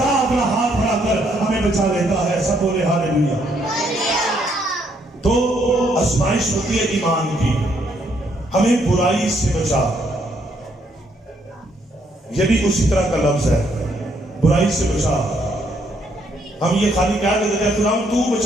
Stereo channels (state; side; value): normal; both; correlation 0.71